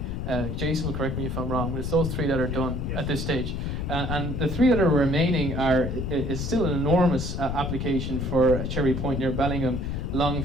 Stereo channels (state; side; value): noise; left; rumble, 3 dB below the sound